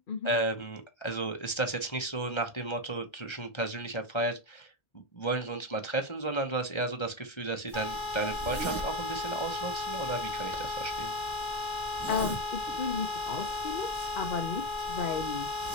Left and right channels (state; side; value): late; right; 1.3 ms